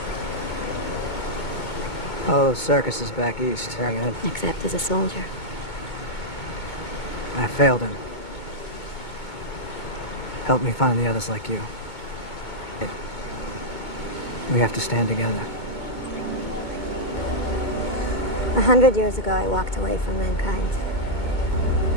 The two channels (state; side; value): late; right; 2.2 ms